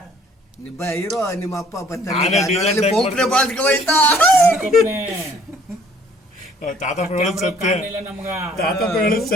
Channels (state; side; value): normal; both; correlation 0.58